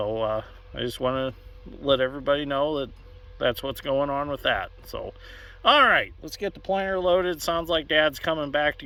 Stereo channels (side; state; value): both; identical; correlation 1.00